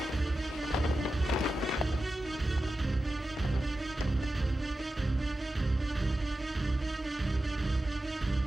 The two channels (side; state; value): both; normal; correlation 0.92